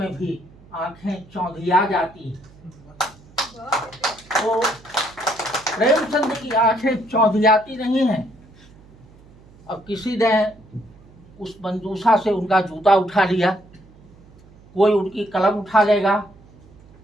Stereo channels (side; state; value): right; noise; hum, 25 dB below the sound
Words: भी आंखें चौंधिया जाती हैं। तो प्रेमचंद की आंखें चौंधियाती नहीं हैं। अब किसी ने उस मंजूषा से उनका जूता उठा लिया, कोई उनकी कलम उठा लेगा,